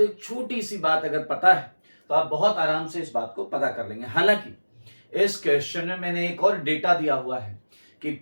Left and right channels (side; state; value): both; inverted; correlation -1.00